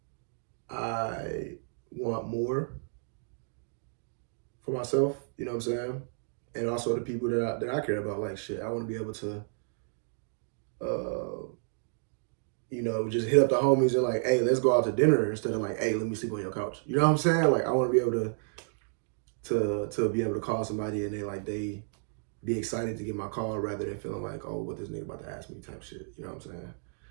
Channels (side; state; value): left; silent; digital silence